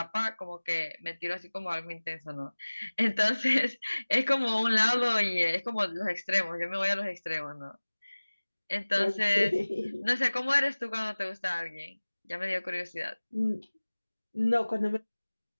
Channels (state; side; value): inverted; both; correlation -1.00